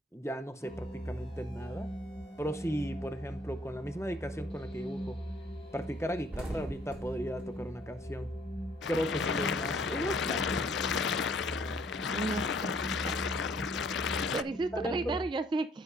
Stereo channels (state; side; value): normal; both; correlation 0.63